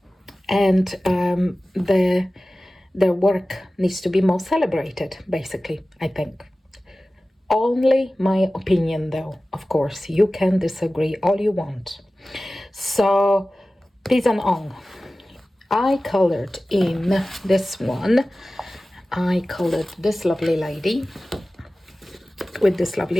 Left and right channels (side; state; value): both; normal; correlation 0.96